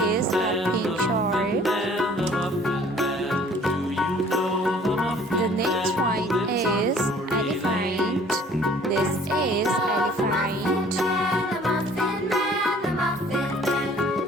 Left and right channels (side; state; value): both; normal; correlation 0.53